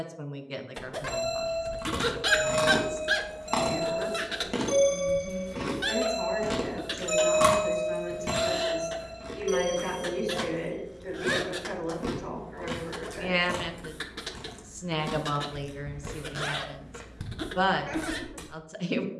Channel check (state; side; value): identical; both; correlation 1.00